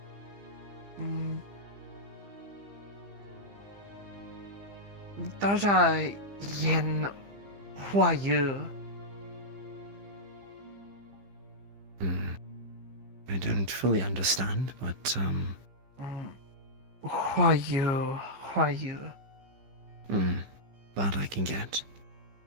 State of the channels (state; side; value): late; left; 15 ms